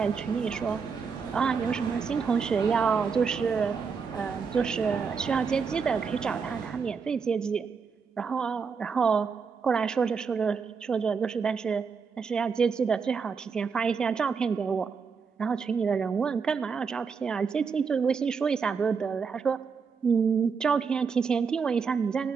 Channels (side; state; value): left; quieter; 5.7 dB